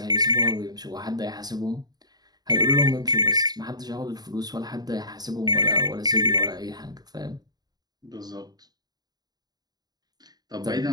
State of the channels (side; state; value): left; late; 0.19 ms